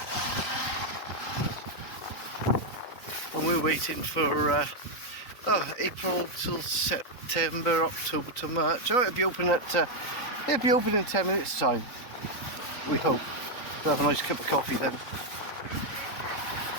And we're waiting for April till September, October to March. Oh, it'll be open in 10 minutes time, we hope. We'll have a nice cup of coffee then.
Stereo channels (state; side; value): late; right; 3.9 ms